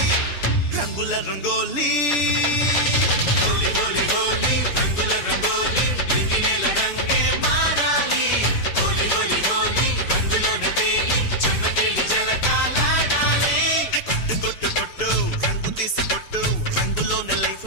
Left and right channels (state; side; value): late; right; 6.9 ms